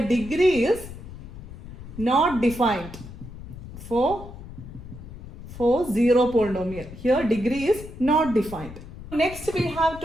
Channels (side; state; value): left; noise; rumble, 13 dB below the sound